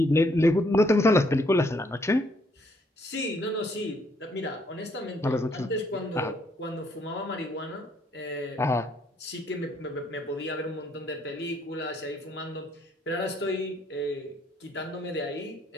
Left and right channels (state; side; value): normal; both; correlation 0.68